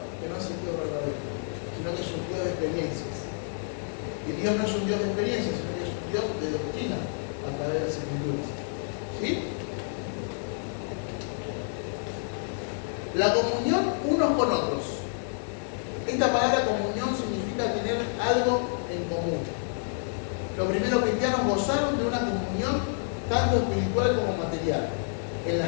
que no es el Dios verdadero, sino que es un Dios de experiencias. Y Dios no es un Dios de experiencias, sino que es un Dios de doctrina a través de las escrituras. ¿Sí? La comunión unos con otros. Esta palabra comunión significa tener algo en común. Los primeros cristianos gozaron de una comunión tanto espiritual como material, en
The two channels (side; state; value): right; silent; 59 dB below the other